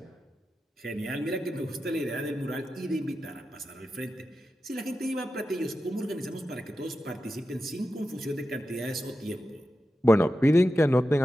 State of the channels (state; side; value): normal; both; correlation 0.91